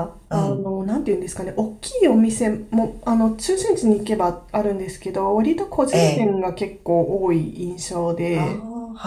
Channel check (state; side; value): identical; both; correlation 1.00